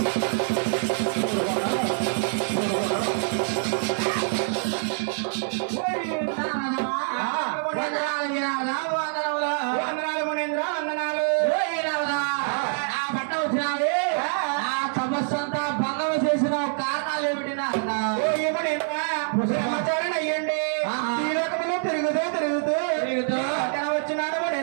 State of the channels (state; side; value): silent; left; digital silence